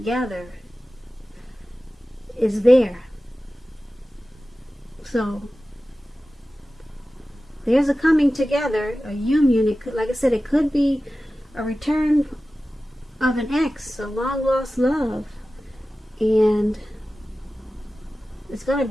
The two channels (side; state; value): both; normal; correlation 0.95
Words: is there. So there's a coming together, a union. It could, like I said, it could be a return of an ex, a long lost love, and it's going to